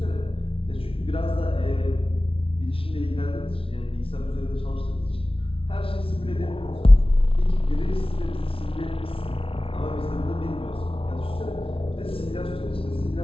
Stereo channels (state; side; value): late; right; 0.26 ms